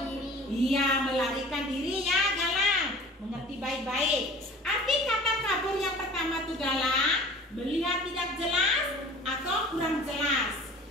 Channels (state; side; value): normal; both; correlation 0.44